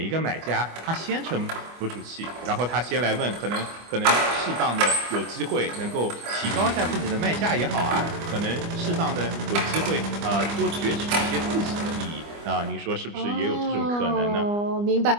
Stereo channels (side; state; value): left; late; 25 ms